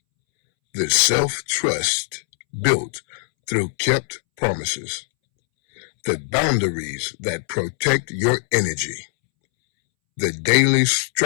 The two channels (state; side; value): silent; right; 65 dB below the other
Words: the self-trust built through kept promises, the boundaries that protect your energy, the daily